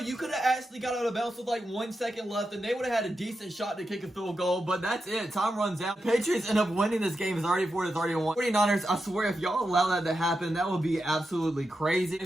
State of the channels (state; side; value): normal; both; correlation 0.88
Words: could have actually got out of bounds with like 1 second left, and they would have had a decent shot to kick a field goal, but that's it. Time runs out. Patriots end up winning this game 34-31. 49ers, I swear, if y'all allow that to happen, that would be absolutely crazy.